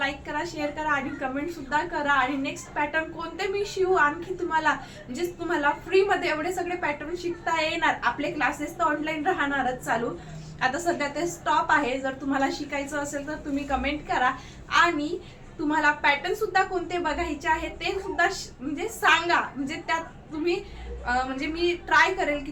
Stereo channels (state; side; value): identical; both; correlation 1.00